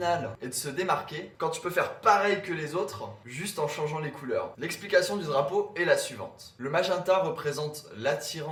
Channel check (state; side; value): identical; both; correlation 1.00